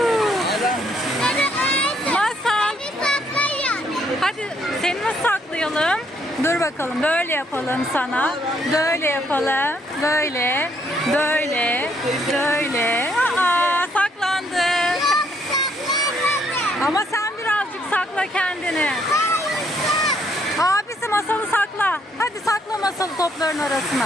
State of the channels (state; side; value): normal; both; correlation 0.70